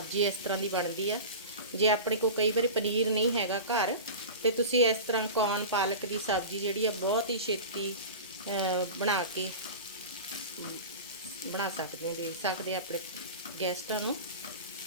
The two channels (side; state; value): both; inverted; correlation -0.30